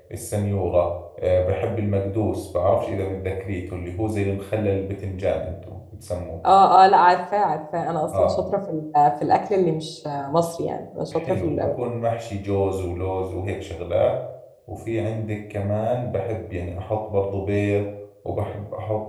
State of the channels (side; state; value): both; identical; correlation 1.00